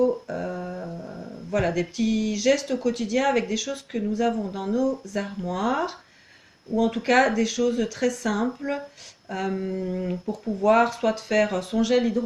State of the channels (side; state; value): both; identical; correlation 1.00